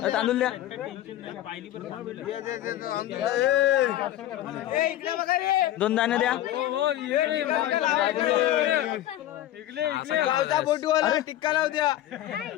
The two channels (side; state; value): right; quieter; 13.5 dB